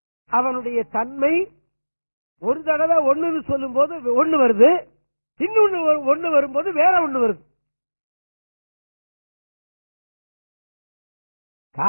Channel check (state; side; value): inverted; both; correlation -1.00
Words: அவனுடைய தன்மை, ஒரு தடவை 1 சொல்லும் போது 1 வருது, இன்னொன்னு ஒண்ணு வரும்போது வேற ஒண்ணு வருது.